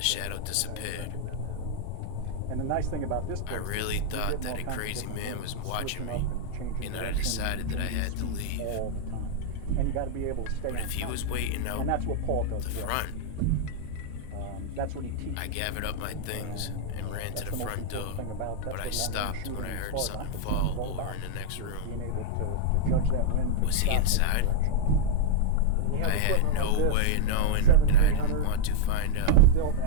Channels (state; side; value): different; both; correlation -0.01